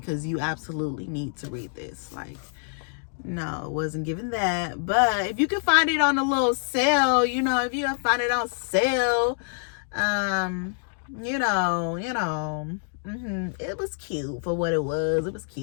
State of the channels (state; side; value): silent; right; digital silence